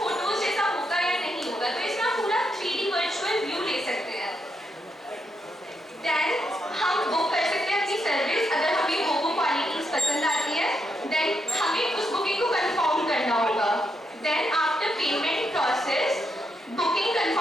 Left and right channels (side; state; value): both; normal; correlation 0.81